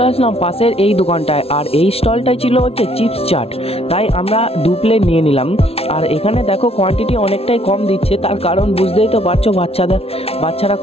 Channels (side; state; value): right; late; 0.29 ms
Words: আসলাম পাশের এই দোকানটায়, আর এই স্টলটাই ছিল হচ্ছে চিপস চাট। তাই আমরা 2 প্লেট নিয়ে নিলাম। আর এখানে দেখো কোয়ান্টিটি অনেকটাই কম দিচ্ছে, তার কারণ বুঝতেই তো পারছো বাচ্চারা